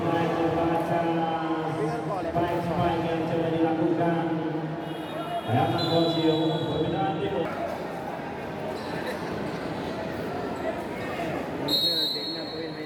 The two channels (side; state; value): both; identical; correlation 1.00